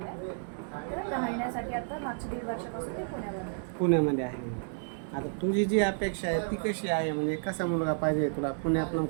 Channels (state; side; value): silent; left; digital silence